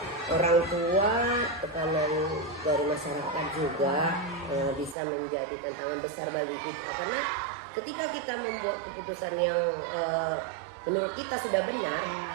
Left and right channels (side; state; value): left; drops out; at 5.0 s